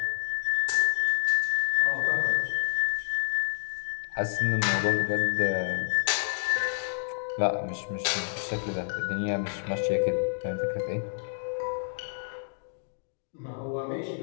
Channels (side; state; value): right; silent; digital silence